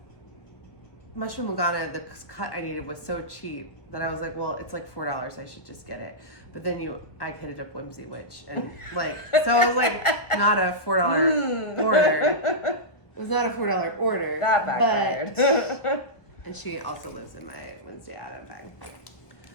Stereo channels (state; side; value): late; right; 1.1 ms